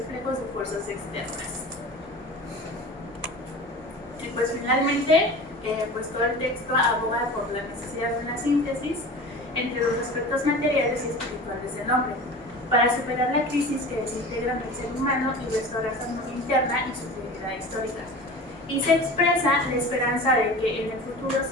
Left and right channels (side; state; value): both; normal; correlation 0.36